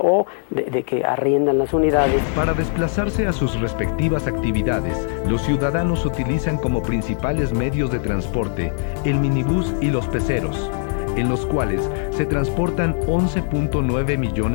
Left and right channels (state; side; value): silent; right; 64 dB below the other